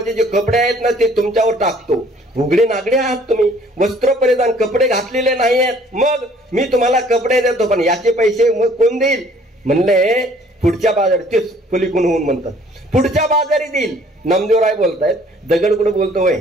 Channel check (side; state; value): both; normal; correlation 0.57